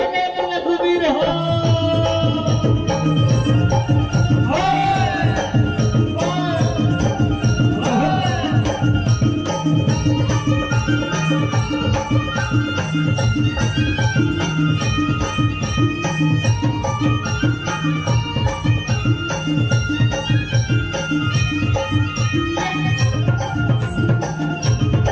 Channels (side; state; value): both; identical; correlation 1.00